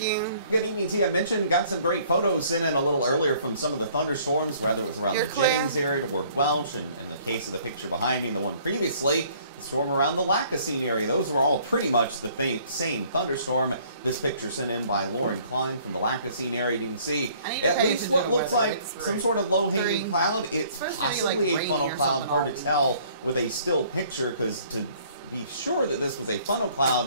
Good evening to you. I mentioned, got some great photos sent in a little earlier from some of the thunderstorms, whether it was around the Jennings area toward Welch, and in the case of the picture behind me and the one previously, the storm around the Lacassine area. Those were all pretty much the same thunderstorm. This picture sent in by Lauren Klein from the Lacassine area. You can see at least what looks like some sort of low-hanging cloud. It's possibly a funnel cloud. Hard to tell with a still picture, because to be sure that this was a funnel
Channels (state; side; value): inverted; both; correlation -0.58